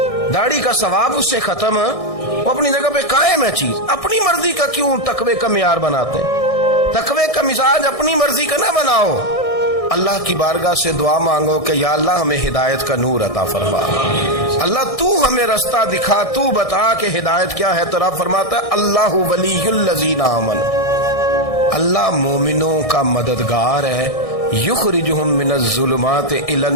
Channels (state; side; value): late; right; 1.6 ms